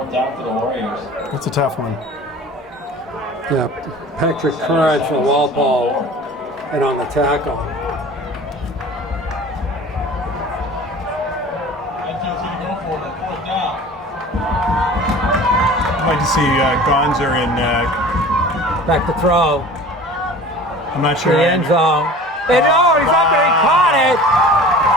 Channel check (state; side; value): normal; both; correlation 0.42